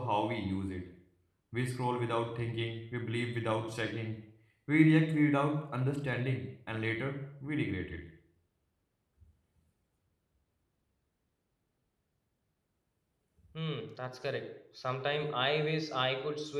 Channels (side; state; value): both; identical; correlation 1.00